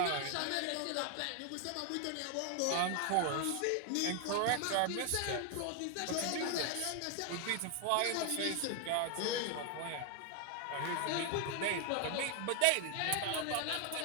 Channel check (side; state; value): both; different; correlation 0.01